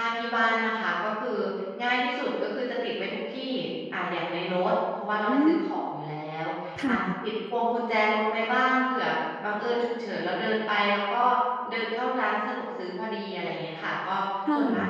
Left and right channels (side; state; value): both; identical; correlation 1.00